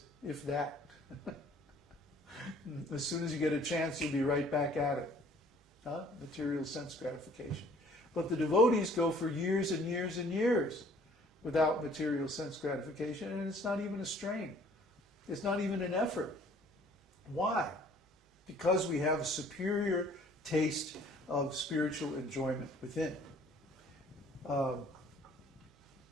if that. As soon as you get a chance, you'll be right back at it. Material sense gratification. But the devotees go for years and years and years without material sense gratification, and it's not even a strain. It's not even an effort. Why? Because we have a superior taste of spiritual enjoyment within. A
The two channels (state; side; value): normal; both; correlation 0.56